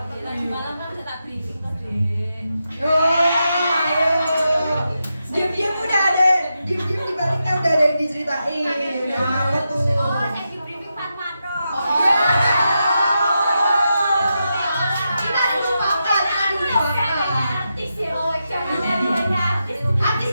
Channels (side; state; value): both; inverted; correlation -0.87